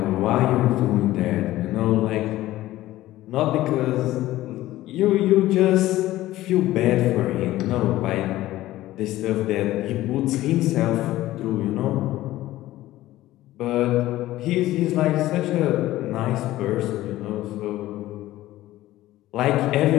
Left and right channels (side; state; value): right; quieter; 15.7 dB